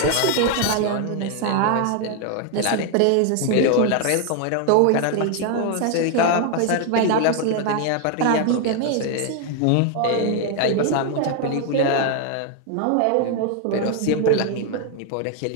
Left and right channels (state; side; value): different; both; correlation 0.00